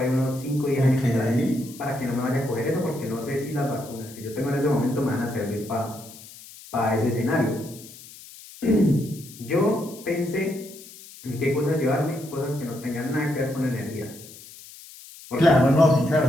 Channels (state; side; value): noise; left; hiss, 18 dB below the sound